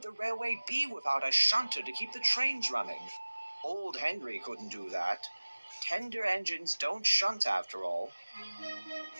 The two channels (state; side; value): inverted; both; correlation -1.00